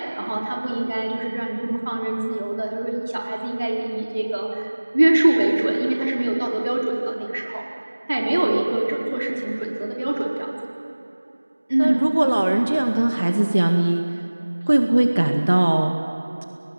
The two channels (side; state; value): both; inverted; correlation -1.00